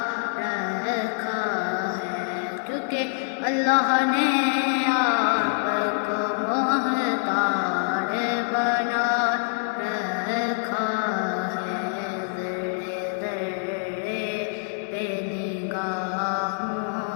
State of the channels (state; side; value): silent; right; 58 dB below the other